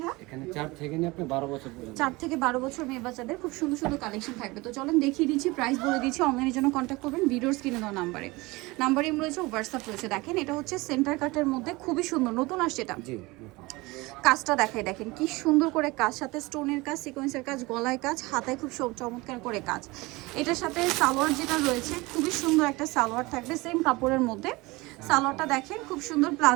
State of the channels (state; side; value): quieter; left; 22.8 dB